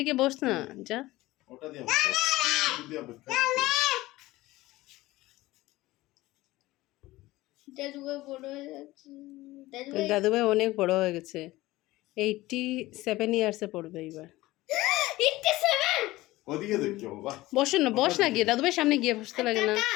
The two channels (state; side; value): quieter; right; 18.3 dB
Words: গিয়ে বস না, যা। ওটা দিয়ে দাদুভাই বড় হয়ে যাচ্ছে। দাদুভাই অনেক বড় হয়ে গেছে, 87 ইয়ার্সে পড়বে এবার। 87 ওদিকে দেখো বাবা। বসো না, বস না গিয়ে, দাদুভাই সামনে গিয়ে বসতে লাগে না।